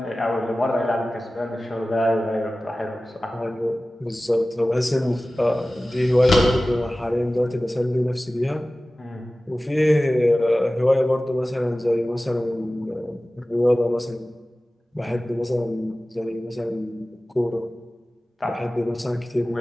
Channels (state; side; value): normal; both; correlation 0.97